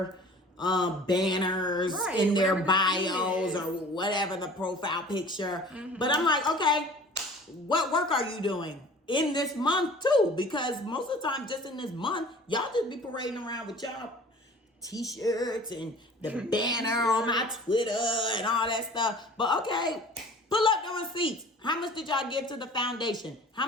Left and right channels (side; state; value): both; normal; correlation 0.46